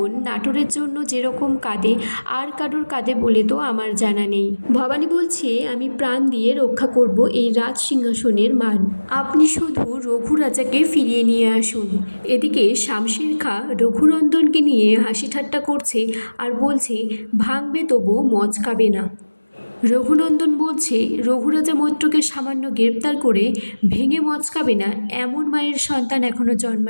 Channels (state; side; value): inverted; both; correlation -1.00